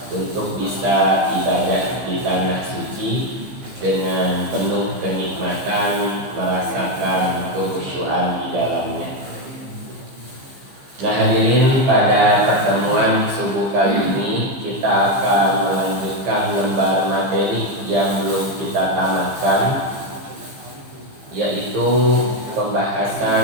untuk bisa ibadah di tanah suci dengan penuh kenikmatan, merasakan kekhusyuan di dalamnya. Nah hadirin, pada pertemuan subuh kali ini kita akan melanjutkan lembar materi yang belum kita tamatkan, yaitu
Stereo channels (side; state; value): left; late; 15 ms